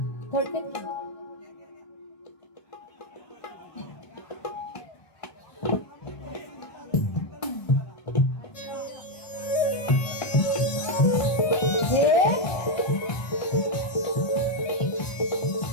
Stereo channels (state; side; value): late; right; 1.5 ms